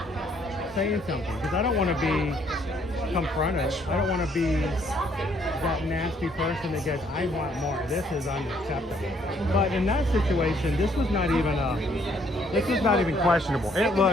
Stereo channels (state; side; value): normal; both; correlation 0.66